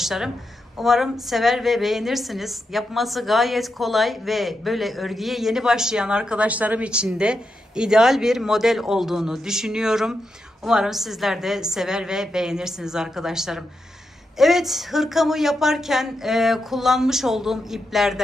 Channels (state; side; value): normal; both; correlation 0.86